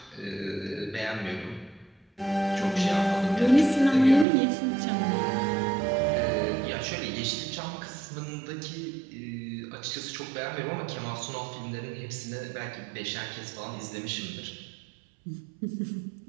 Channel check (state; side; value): drops out; left; at 4.2 s